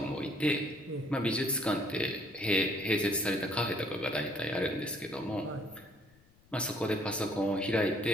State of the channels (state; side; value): noise; left; rumble, 29 dB below the sound